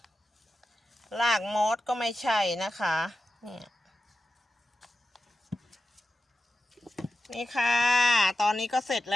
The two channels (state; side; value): normal; both; correlation 0.92